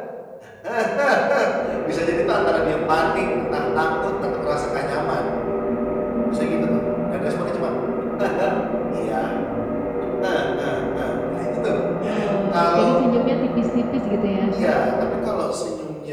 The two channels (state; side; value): identical; both; correlation 1.00